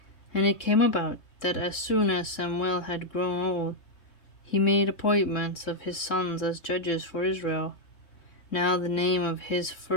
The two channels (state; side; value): late; right; 3.6 ms